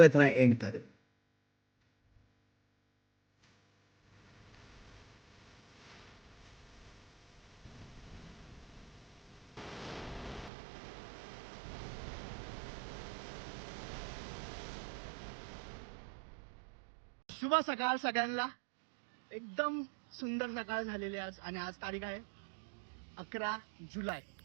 राहा एंड पर्यंत. शुभ सकाळ सगळ्यांना. एकदम सुंदर सकाळ झालेली आहे आज, आणि आज तारीख आहे 11 जुलै.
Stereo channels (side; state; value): left; drops out; at 10.5 s